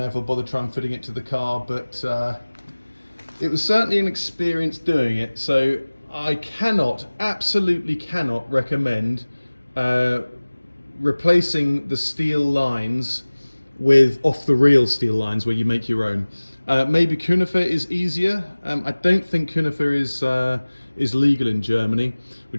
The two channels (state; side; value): inverted; both; correlation -1.00